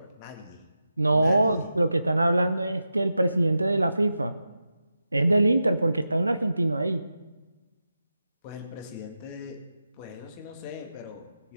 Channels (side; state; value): both; inverted; correlation -0.90